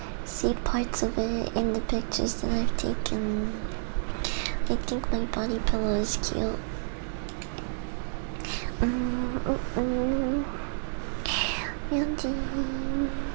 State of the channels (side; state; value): left; silent; digital silence